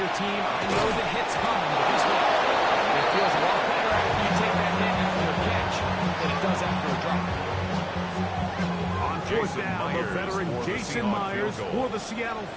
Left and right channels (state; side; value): identical; both; correlation 1.00